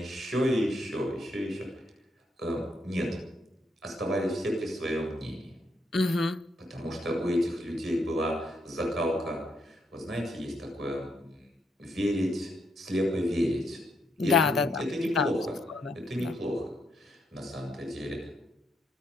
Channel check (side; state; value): both; normal; correlation 0.77